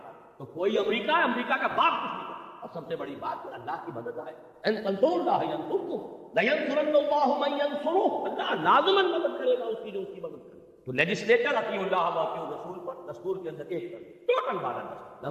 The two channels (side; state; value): both; identical; correlation 1.00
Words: تو کوئی امریکہ کا باپ کچھ نہیں. اور سب سے بڑی بات اللہ کی مدد آئے. ان تنصروا اللہ ینصرکم لینصرن اللہ من ینصرہ. اللہ لازماً مدد کرے گا اس کی جو اس کی مدد کرے. تو لیجسلیچر اطیعوا اللہ واطیعوا الرسول پر دستور کے اندر ایک ٹوٹل بالادستی.